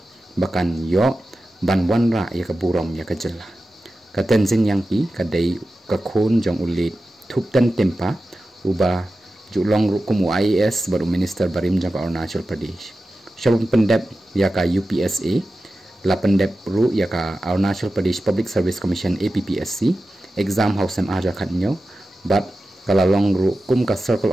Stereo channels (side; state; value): both; normal; correlation 0.93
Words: bakan yo, ban wanra ya ka Burom ya ka Jela. Ka Tenzin yang ki, ka day ka Khon jong ulit, Thuptan Tempa, uba julong ru kumu IAS baru Minister Barim jong ka Arunachal Pradesh. Syabun pendep ya ka UPSA, la pendep ru ya ka Arunachal Pradesh Public Service Commission APPSC, exam house aja Katnyau, bat kalalong ru kum ka